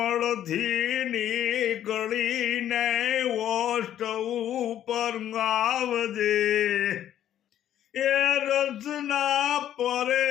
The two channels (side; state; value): right; quieter; 11.2 dB